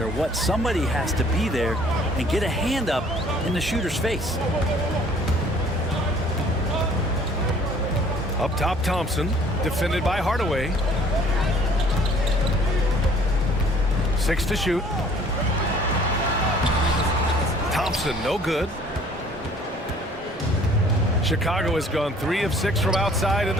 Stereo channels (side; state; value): both; normal; correlation 0.55